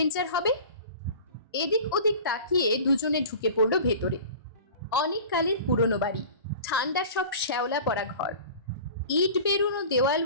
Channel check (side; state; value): both; inverted; correlation -0.39